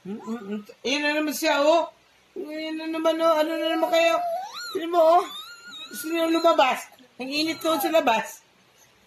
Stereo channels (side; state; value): both; identical; correlation 1.00